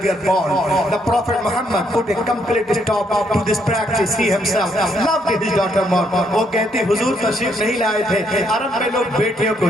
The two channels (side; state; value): both; normal; correlation 0.73